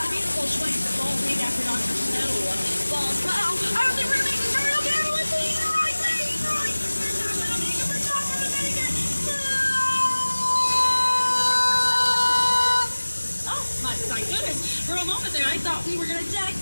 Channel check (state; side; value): inverted; both; correlation -1.00